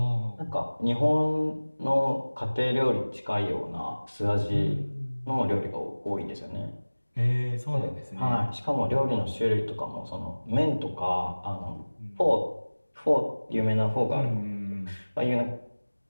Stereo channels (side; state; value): both; inverted; correlation -1.00